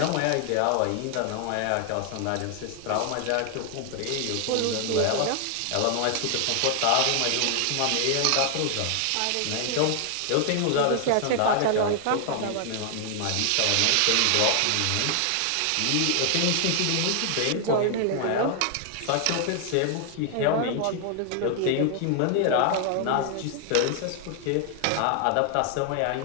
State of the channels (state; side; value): different; both; correlation 0.00